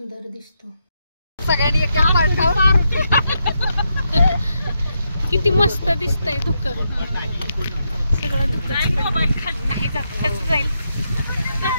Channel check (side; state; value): both; inverted; correlation -0.82